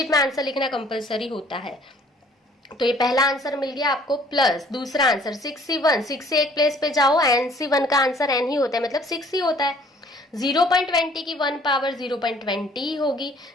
में आंसर लिखना कंपलसरी होता है। तो ये पहला आंसर मिल गया आपको, प्लस दूसरा आंसर 6c1, 6 से एक प्लेस पे जाओ, nc1 का आंसर n ही होता है, मतलब 6 ही होता है। 0.20 की 1 पावर 0.20 ही होगी,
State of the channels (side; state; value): both; normal; correlation 0.56